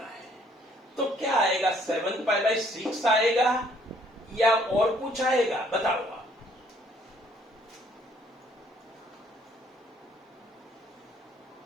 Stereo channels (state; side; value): normal; both; correlation 0.63